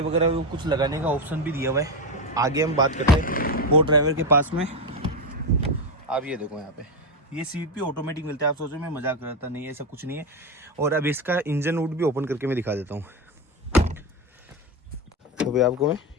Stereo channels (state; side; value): normal; both; correlation 0.12